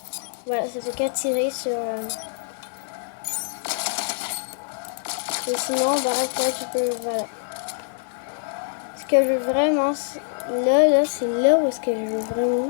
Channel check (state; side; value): silent; right; digital silence